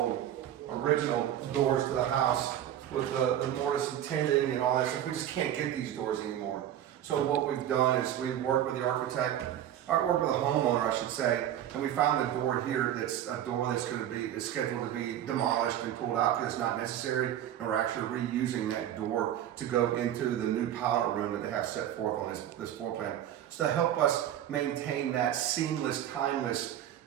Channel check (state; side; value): quieter; left; 11.2 dB